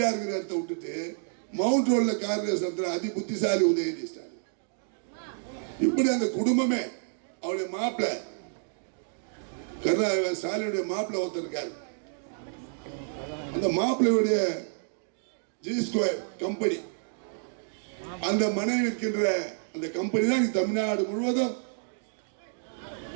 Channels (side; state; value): left; silent; digital silence